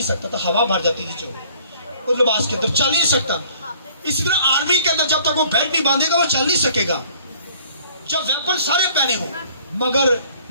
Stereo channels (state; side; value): inverted; both; correlation -0.56